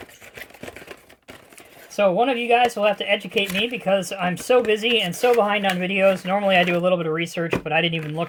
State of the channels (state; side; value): identical; both; correlation 1.00